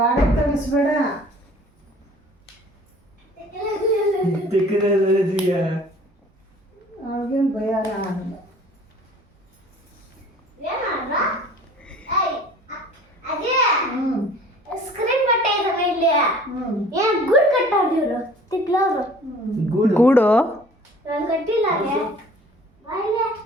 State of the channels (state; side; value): normal; both; correlation 0.49